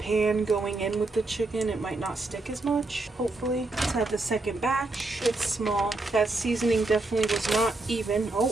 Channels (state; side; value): quieter; left; 3.1 dB